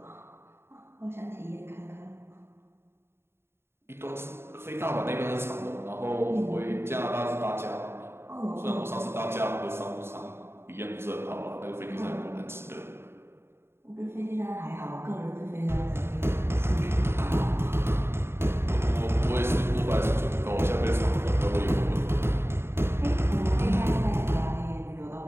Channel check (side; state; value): left; late; 0.12 ms